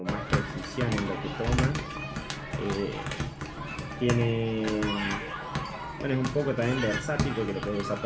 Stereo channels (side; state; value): both; identical; correlation 1.00